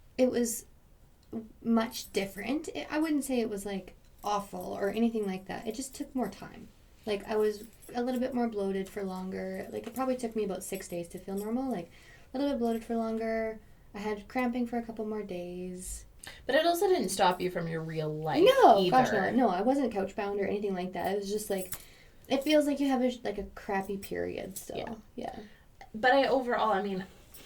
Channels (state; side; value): identical; both; correlation 1.00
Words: It was much different. I wouldn't say it was awful or anything like that. It just took more time. I was a little bit more bloated for longer. It probably took me about 6 days to feel normal. A little bit bloated for longer. I had cramping for a couple more days. But it also didn't stop you from your real life. No, either. Gosh, no. No, I wasn't couch bound or anything like that. It was just it feels like you have a crappy period still. Yeah. But